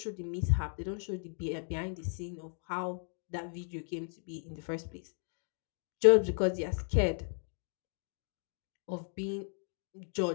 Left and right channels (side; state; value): right; silent; 54 dB below the other